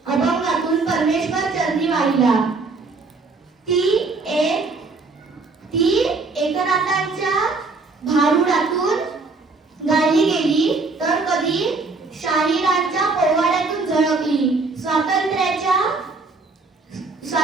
अभंगातून परमेश्वर चरणी वाहिला. ती एकनाथांच्या भारुडातून गायली गेली तर कधी शाहिरांच्या पोवाड्यातून झळकली.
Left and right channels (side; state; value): left; quieter; 3.9 dB